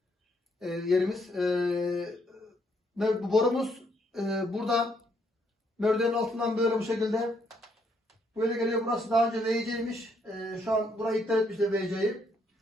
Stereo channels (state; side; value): normal; both; correlation 0.72